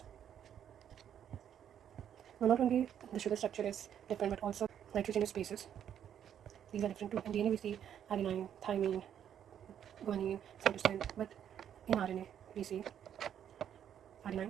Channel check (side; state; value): left; quieter; 9.5 dB